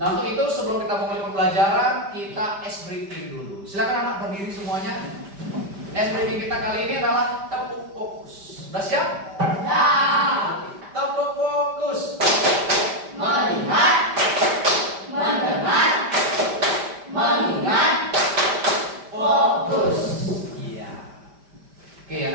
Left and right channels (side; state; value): left; late; 5.1 ms